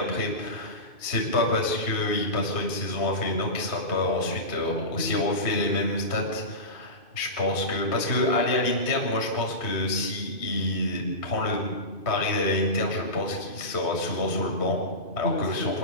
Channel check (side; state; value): right; late; 2.5 ms